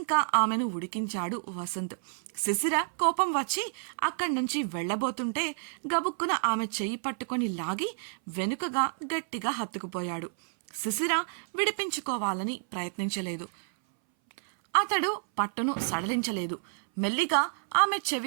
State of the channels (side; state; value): left; silent; 58 dB below the other